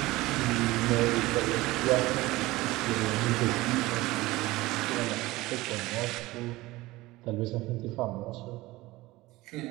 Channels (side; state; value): left; quieter; 19.3 dB